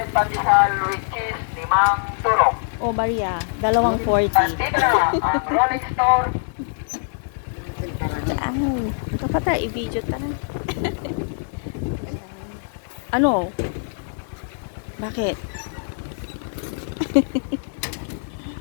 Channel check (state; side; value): silent; right; digital silence